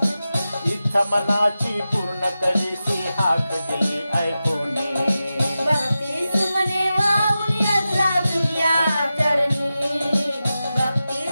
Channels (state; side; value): inverted; both; correlation -0.92